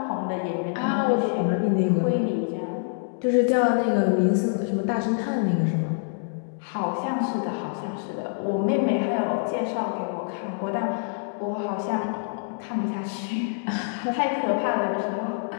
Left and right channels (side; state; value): right; silent; digital silence